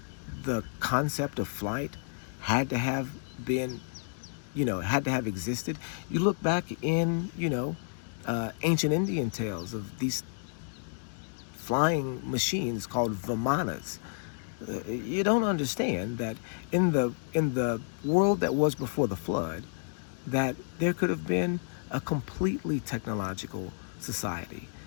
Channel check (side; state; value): right; silent; digital silence